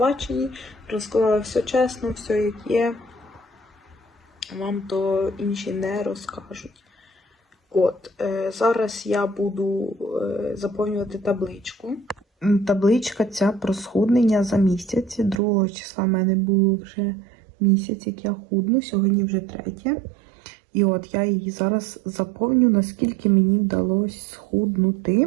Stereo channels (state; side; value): drops out; left; at 15.4 s